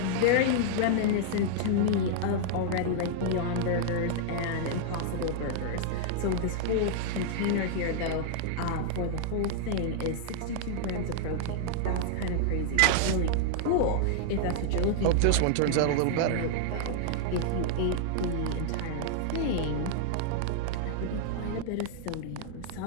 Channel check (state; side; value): different; both; correlation -0.01